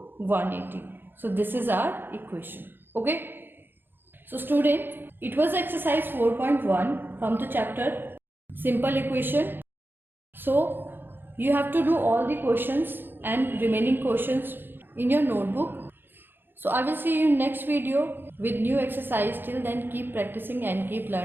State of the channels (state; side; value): late; left; 0.099 ms